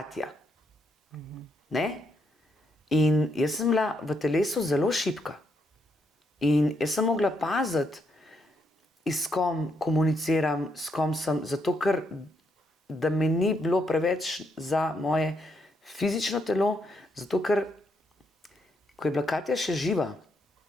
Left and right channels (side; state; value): both; normal; correlation 0.77